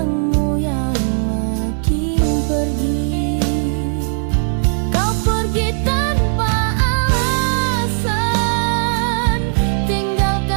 yang makin pergi. Kau pergi tanpa alasan,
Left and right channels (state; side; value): silent; left; digital silence